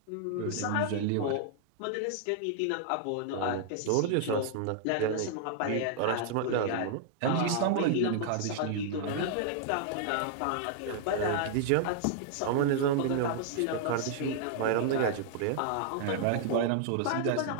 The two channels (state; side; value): different; both; correlation -0.01